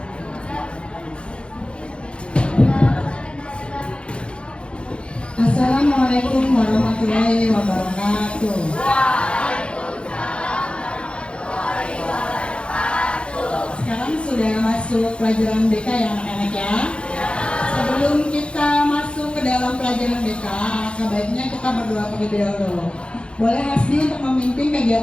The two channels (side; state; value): right; late; 0.057 ms